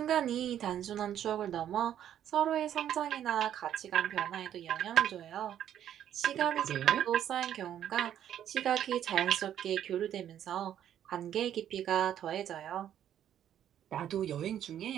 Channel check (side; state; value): left; quieter; 10.5 dB